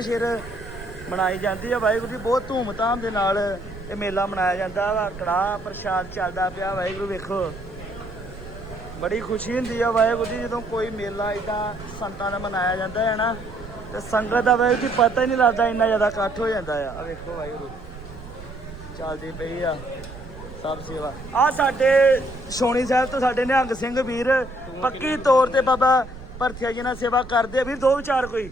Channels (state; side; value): noise; right; rumble, 15 dB below the sound